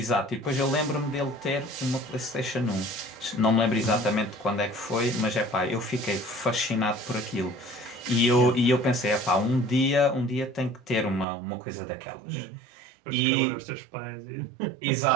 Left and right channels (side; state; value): left; drops out; at 11.2 s